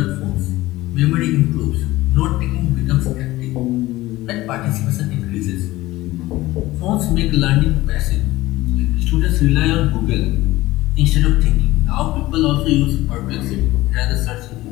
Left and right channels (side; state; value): right; quieter; 17.8 dB